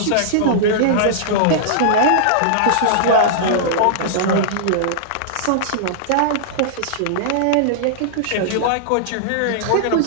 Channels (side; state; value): both; different; correlation -0.02